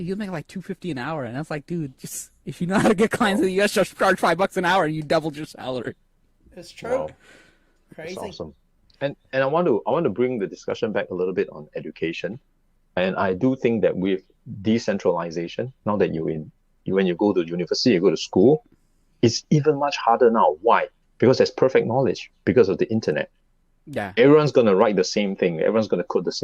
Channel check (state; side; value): identical; both; correlation 1.00